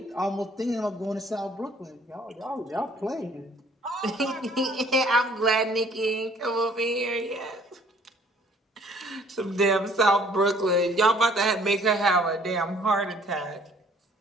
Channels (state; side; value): normal; both; correlation 0.58